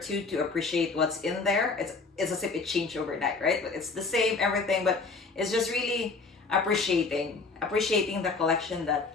to appreciate what's in there. It's as if it changed overnight, right? But it's the same everything, but it's just really appreciating the collection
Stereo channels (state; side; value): quieter; right; 4.2 dB